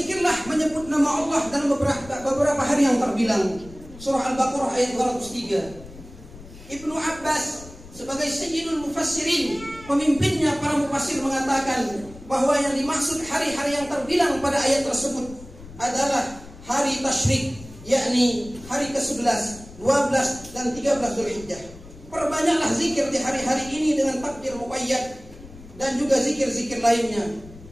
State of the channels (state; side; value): noise; left; rumble, 18 dB below the sound